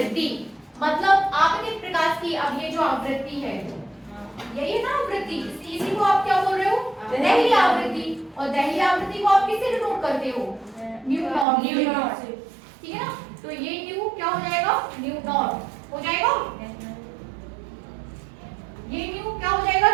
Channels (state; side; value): drops out; left; at 11.5 s